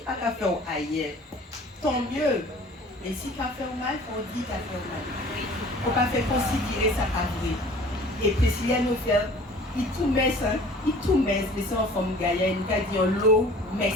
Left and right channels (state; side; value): normal; both; correlation 0.47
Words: pas qu'a fait ailleurs, tant mieux. Mais si qu'a fait mal, il faut dire qu'a fait mal. Il ne faut pas faire considérer ça pas vrai. Et Priscilla nous fait, il tout met ça, il tout met, mais c'est en forme gaïa, il nous a dit l'eau,